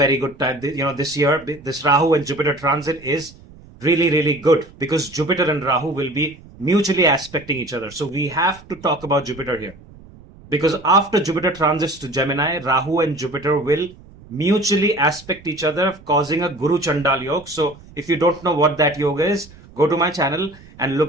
good time. This year, this Rahu and Jupiter transit is really, really good, because Jupiter and Rahu will be mutually aspecting each other. So we have to talk about Jupiter here, because after Jupiter transits to Gemini, Rahu and Jupiter will mutually aspect each other, causing a Guru Chandal Yoga. So if you don't know what that yoga is, go to my channel and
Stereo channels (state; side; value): noise; right; rumble, 22 dB below the sound